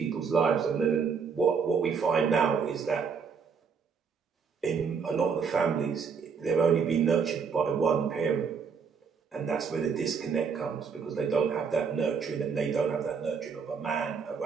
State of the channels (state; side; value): quieter; left; 6.0 dB